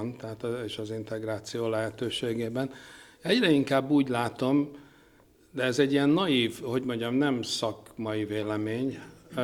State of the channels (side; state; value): both; identical; correlation 1.00